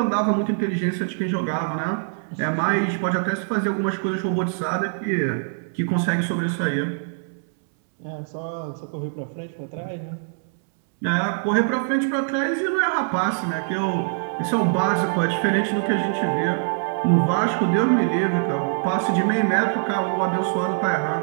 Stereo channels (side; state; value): left; silent; 63 dB below the other